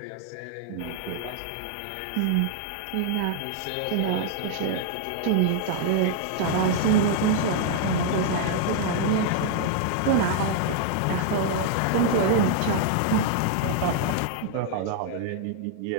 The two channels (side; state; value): both; different; correlation -0.01